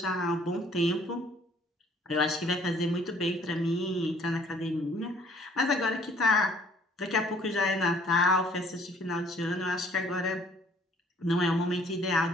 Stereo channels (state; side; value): normal; both; correlation 0.59